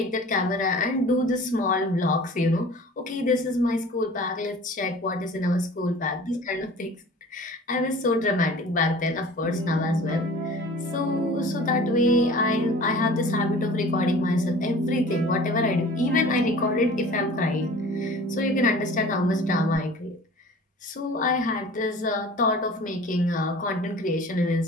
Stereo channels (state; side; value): normal; both; correlation 0.43